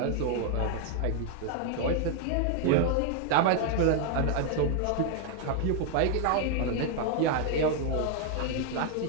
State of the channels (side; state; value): both; different; correlation 0.00